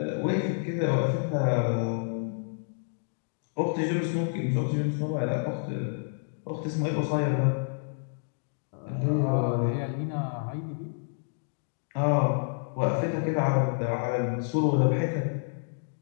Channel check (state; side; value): silent; right; digital silence